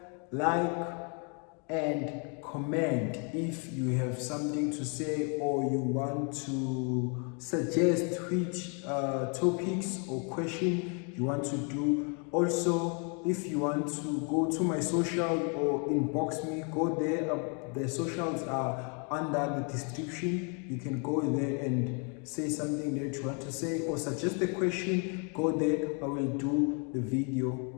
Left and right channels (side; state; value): right; quieter; 37.4 dB